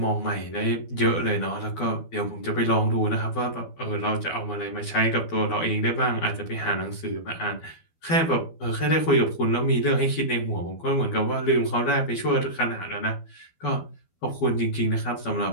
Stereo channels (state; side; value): late; right; 12 ms